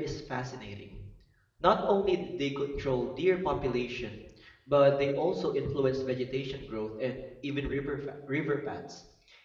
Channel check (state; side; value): identical; both; correlation 1.00